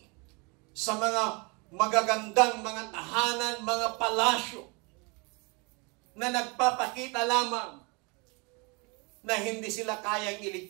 sa mga magagandang mga tahanan, mga palasyo na nagpapakita lamang na hindi sila kayang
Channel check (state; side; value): quieter; left; 30.3 dB